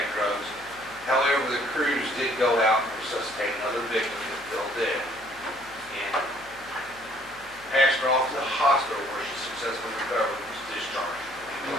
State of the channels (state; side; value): noise; left; hum, 24 dB below the sound